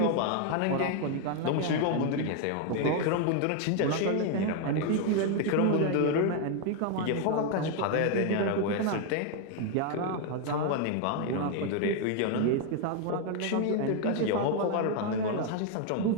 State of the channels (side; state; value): both; different; correlation 0.01